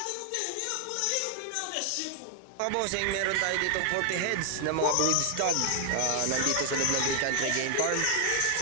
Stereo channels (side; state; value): both; different; correlation 0.00